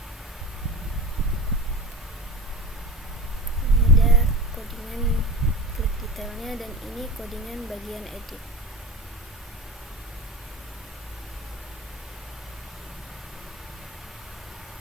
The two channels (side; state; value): both; normal; correlation 0.32